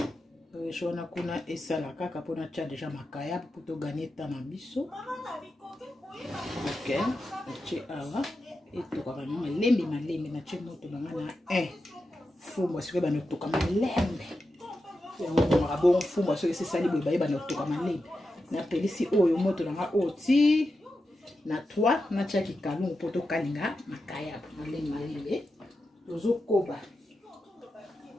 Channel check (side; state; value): both; normal; correlation 0.89